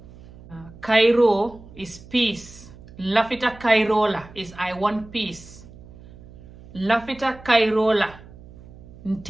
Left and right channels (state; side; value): noise; right; hum, 19 dB below the sound